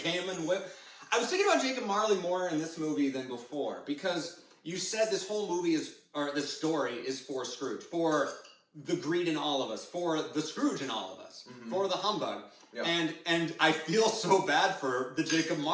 and whipped. I was thinking about Jacob Marley more in this movie than before because you said this whole movie this story is for Scrooge, for the greed in all of us, for the Scrooge in all of us, for the humbug. Yep. And I feel so bad for the Jacob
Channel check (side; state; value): both; identical; correlation 1.00